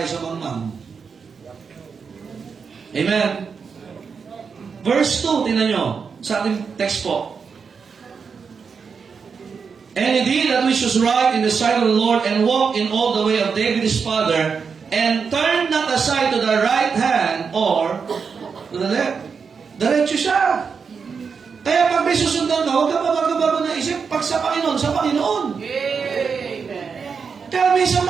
sa mangmang. Amen. Verse 2, tingnan nyo, sa ating text po. And indeed that we should right in the sight of the Lord and walk in all the way of David his father, and turn not aside to the right hand or to the left. Diretso siya. Kaya pag may susundan ka, huwag ka mabago-bago na isip. Pag sa Panginoon, sa Panginoon. Amen. Kaya minsan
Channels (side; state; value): left; quieter; 5.8 dB